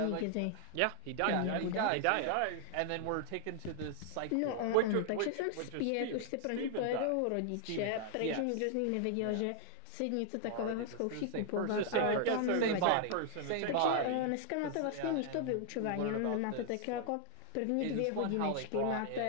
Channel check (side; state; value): both; different; correlation 0.00